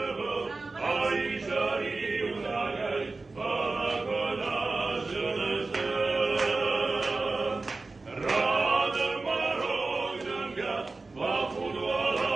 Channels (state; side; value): quieter; left; 3.6 dB